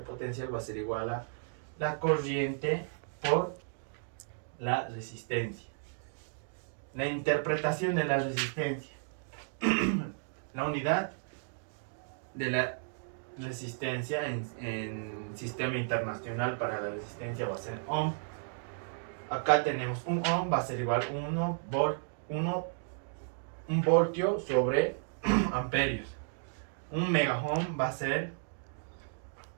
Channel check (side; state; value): left; silent; digital silence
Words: potencial, va a ser igual a la corriente por la resistencia. La interpretación de la resistencia. La unidad de la resistencia en sistema internacional para la resistencia va a ser ohm. Acá tenemos un ohm, va a ser igual a 1 voltio sobre amperios. Un megaohm va a ser